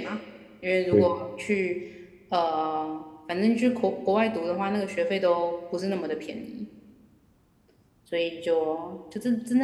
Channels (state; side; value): identical; both; correlation 1.00